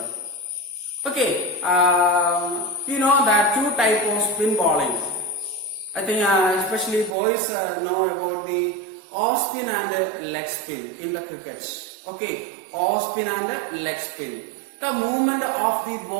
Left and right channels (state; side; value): drops out; left; at 7.2 s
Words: Okay, you know that 2 types of spin bowling. I think especially boys know about the off spin and leg spin in the cricket. Okay, off spin and leg spin. The movement of the